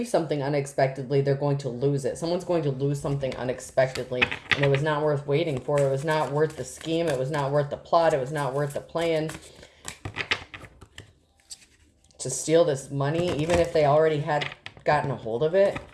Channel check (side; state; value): both; identical; correlation 1.00